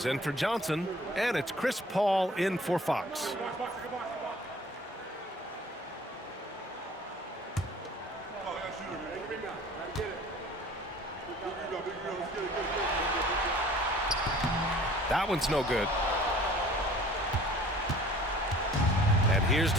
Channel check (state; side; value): normal; both; correlation 0.50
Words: in for Johnson, and it's Chris Paul in for Fox. That one's no good. And here's